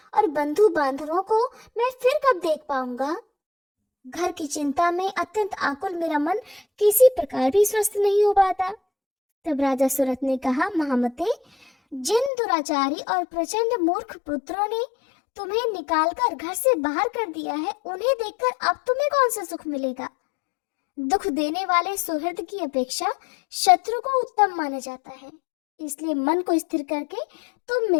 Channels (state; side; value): drops out; right; at 12.3 s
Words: और बंधु बांधवों को मैं फिर कब देख पाऊंगा? घर की चिंता में अत्यंत आकुल मेरा मन किसी प्रकार भी स्वस्थ नहीं हो पाता। तब राजा सुरथ ने कहा, महामते, जिन दुराचारी और प्रचंड मूर्ख पुत्रों ने तुम्हें निकालकर घर से बाहर कर दिया है, उन्हें देखकर अब तुम्हें कौन सा सुख मिलेगा? दुख देने वाले सुहृद की अपेक्षा शत्रु को उत्तम माना जाता है। इसलिए मन को स्थिर करके तुम